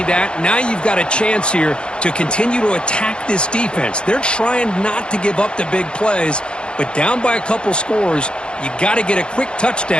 that. Now you've got a chance here to continue to attack this defense. They're trying not to give up the big plays, but down by a couple scores, you got to get a quick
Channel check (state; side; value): late; right; 0.053 ms